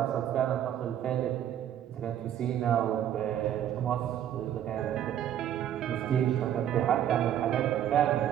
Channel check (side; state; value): left; quieter; 10.6 dB